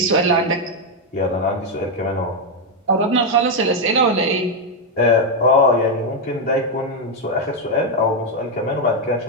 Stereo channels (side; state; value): both; normal; correlation 0.03